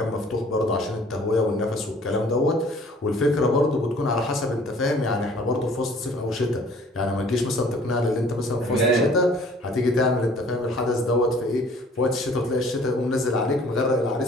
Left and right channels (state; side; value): normal; both; correlation 0.54